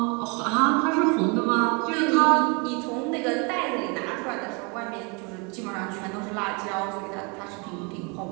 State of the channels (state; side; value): quieter; left; 32.1 dB